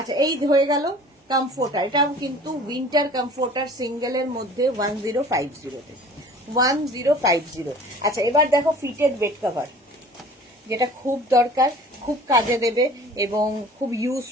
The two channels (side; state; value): both; normal; correlation 0.46